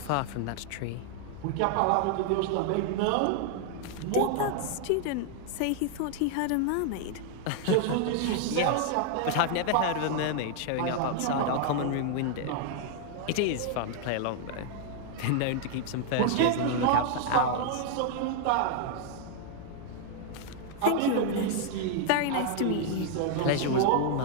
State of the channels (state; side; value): different; both; correlation 0.00